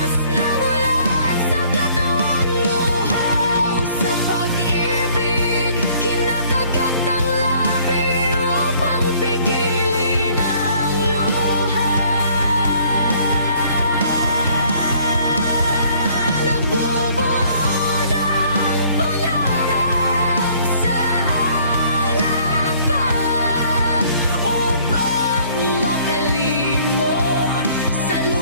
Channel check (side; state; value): both; inverted; correlation -0.58